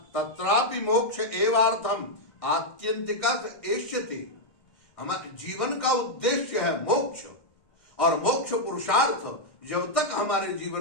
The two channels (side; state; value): right; late; 1.6 ms